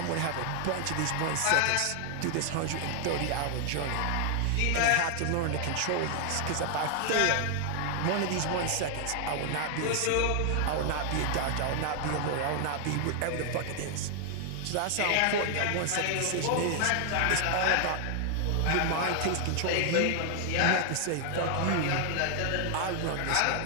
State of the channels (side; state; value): both; different; correlation 0.00